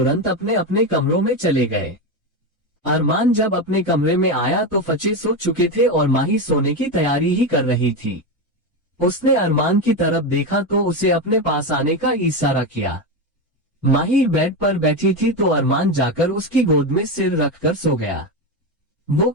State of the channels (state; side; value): normal; both; correlation 0.14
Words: अपने अपने कमरों में चले गए। अरमान जब अपने कमरे में आया तो फचे सो चुके थे और माही सोने की तैयारी ही कर रही थी। उसने अरमान की तरफ देखा तो उसे अपने पास आने का इशारा किया। माही बेड पर बैठी थी तो अरमान जाकर उसकी गोद में सिर रखकर सो गया। वो